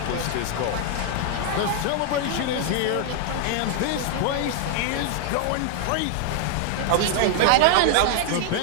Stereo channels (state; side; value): different; both; correlation 0.00